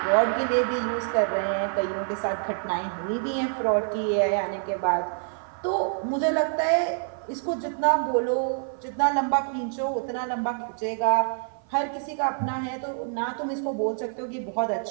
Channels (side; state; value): left; silent; 55 dB below the other